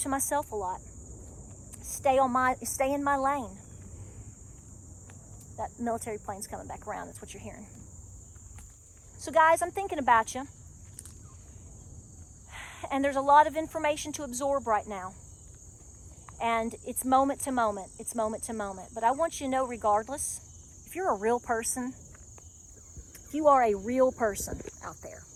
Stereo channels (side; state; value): both; identical; correlation 1.00